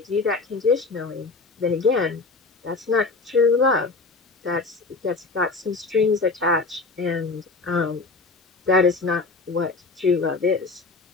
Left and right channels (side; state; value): right; quieter; 3.9 dB